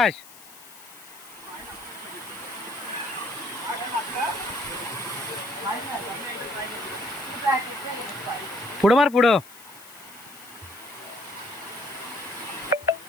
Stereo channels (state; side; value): noise; left; hiss, 19 dB below the sound